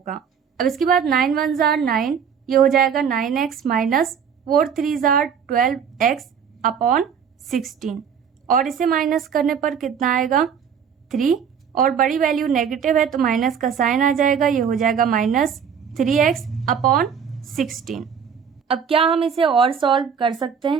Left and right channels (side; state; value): left; quieter; 7.3 dB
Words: अब इसके बाद 9 1 जार 9, ये हो जाएगा 9x minus 4 3 jar 12x upon 16, और इसे माइनस करने पर कितना आएगा 3, और बड़ी वैल्यू नेगेटिव है तो माइनस का साइन आ जाएगा, ये हो जाएगा माइनस 3x अपॉन 16। अब क्या हम इसे और सॉल्व कर सकते